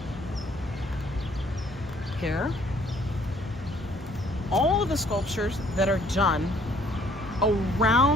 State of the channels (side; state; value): both; normal; correlation 0.62